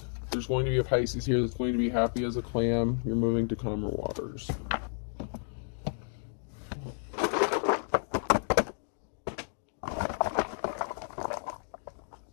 There's going to be a Pisces here that's going to be happy as a clam. You're moving to calmer waters.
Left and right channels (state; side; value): silent; right; digital silence